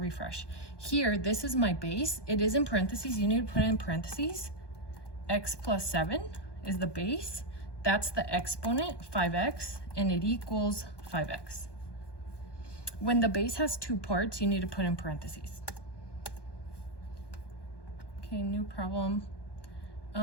Here, this is my base. It is in parentheses. You need to put it in parentheses. X plus 7 is the base. That's the exponent, 5x, and it equals 5x. When the base has 2 parts, you need to put in parentheses. Okay, new problem.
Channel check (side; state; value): right; late; 1.2 ms